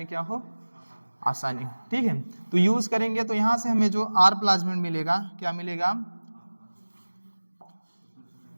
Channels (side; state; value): both; inverted; correlation -1.00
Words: क्या हो, आसानी, ठीक है। तो यूज करेंगे तो यहां से हमें जो आर प्लाज्मिड मिलेगा, क्या मिलेगा,